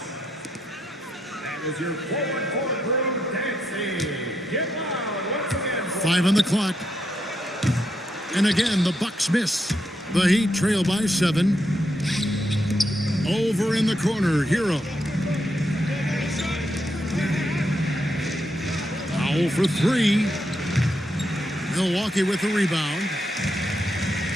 is your forward court crew dancing. Get loud once again. 5 on the clock. And again, the Bucks miss. The Heat trail by 7. Over in the corner, Hero. Powell for 3. Milwaukee with the rebound.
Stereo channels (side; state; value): both; normal; correlation 0.81